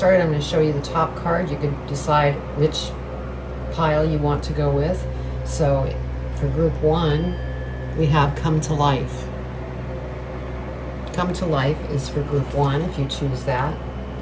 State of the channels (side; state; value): both; identical; correlation 1.00